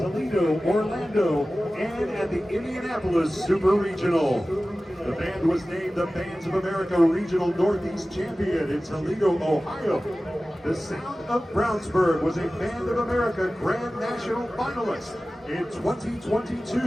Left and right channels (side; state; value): both; normal; correlation 0.96